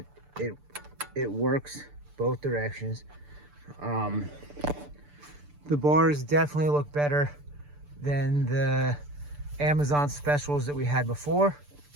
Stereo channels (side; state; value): left; late; 6.8 ms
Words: it works both directions. The bars definitely look better than the Amazon specials that we had before.